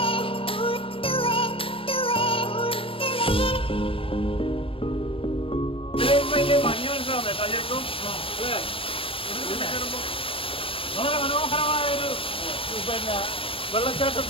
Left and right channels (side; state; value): right; late; 0.26 ms